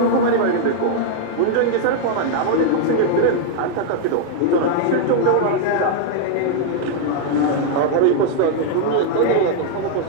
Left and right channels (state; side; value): different; both; correlation -0.01